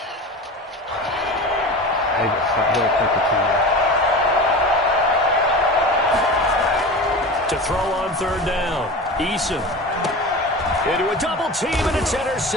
To throw on 3rd down, Eason into a double team, and it's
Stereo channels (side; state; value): both; normal; correlation 0.31